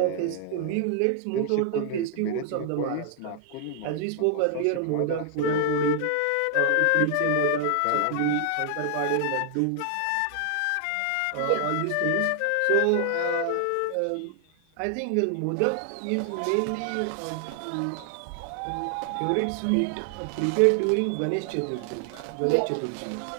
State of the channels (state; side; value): different; both; correlation 0.00